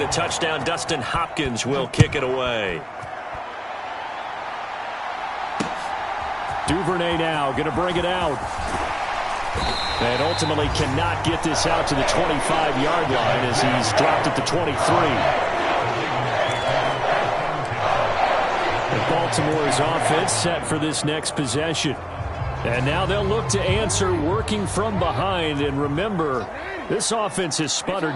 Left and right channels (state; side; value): identical; both; correlation 1.00